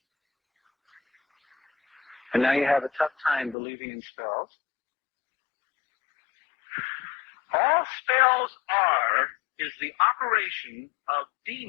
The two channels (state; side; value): drops out; right; at 3.6 s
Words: And now you have a tough time believing in spells. All spells is the operation of